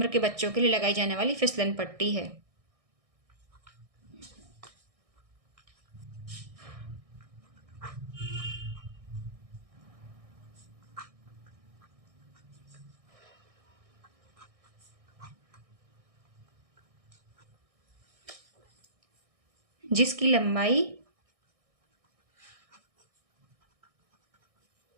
के बच्चों के लिए लगाई जाने वाली फिसलन पट्टी है। जिसकी लंबाई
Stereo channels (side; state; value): left; late; 1.6 ms